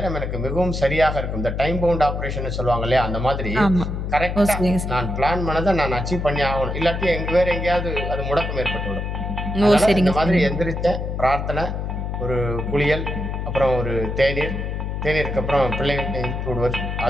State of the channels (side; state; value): left; noise; hum, 3 dB below the sound